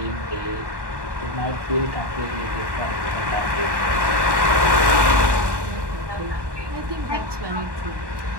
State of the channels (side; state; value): left; late; 1.2 ms